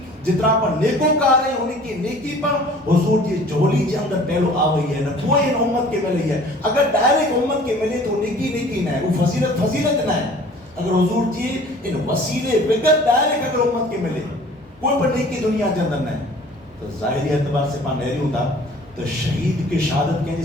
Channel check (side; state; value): both; normal; correlation 0.49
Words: جترا پر نیکوکار ہے ان کی نیکی پر حضور جی جھولی کے اندر پہلو آ گئی ہے نہ کوئی ان امت کے ملی ہے. اگر ڈائریکٹ امت کے ملے تو نیکی نہ ہے, وہ فضیلت نہ ہے. اگر حضور جی ان وسیلے بغیر ڈائریکٹ اگر امت کے ملے کوئی پر نیکی دنیا کے اندر نہ ہے تو ظاہری اعتبار سے پان نہری ہوتا تو شہید کی شہادت کے